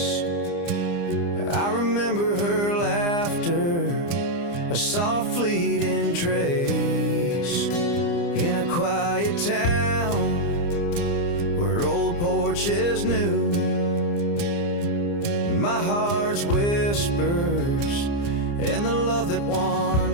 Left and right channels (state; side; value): late; right; 29 ms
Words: I remember her laughter, a soft fleeting trace, in a quiet town where old porches new. My heart's whispers and the love that